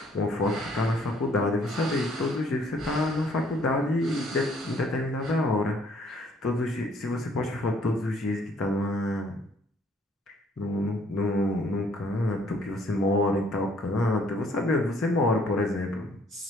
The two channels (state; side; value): normal; both; correlation 0.63